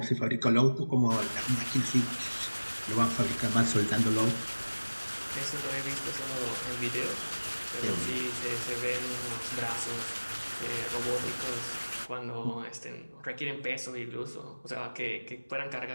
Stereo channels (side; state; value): both; inverted; correlation -1.00